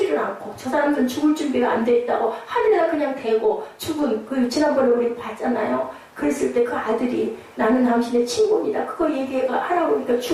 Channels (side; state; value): both; identical; correlation 1.00